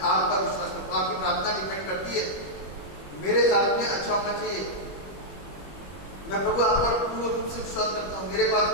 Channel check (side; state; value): right; late; 21 ms